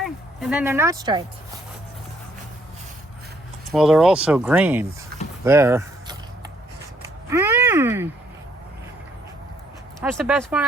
And then they're not striped. Well, they're also green there. Mmm. That's the best one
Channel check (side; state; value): both; normal; correlation 0.68